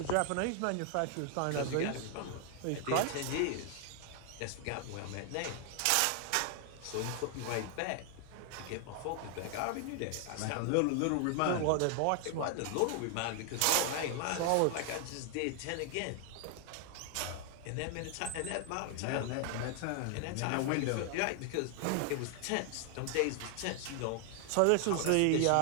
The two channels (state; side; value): different; both; correlation 0.00